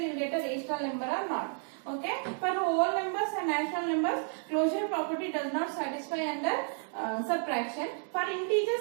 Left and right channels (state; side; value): silent; left; 57 dB below the other